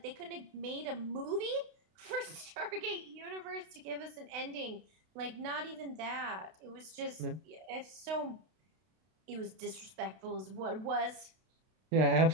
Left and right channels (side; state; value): left; late; 32 ms